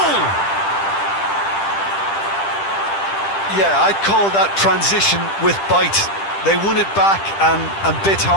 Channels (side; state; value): right; late; 10 ms